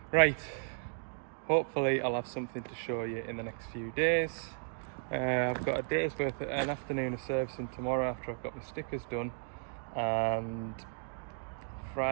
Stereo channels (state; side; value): silent; left; 55 dB below the other